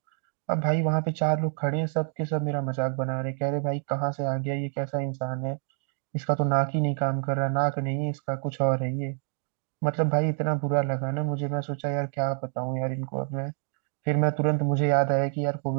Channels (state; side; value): silent; left; 60 dB below the other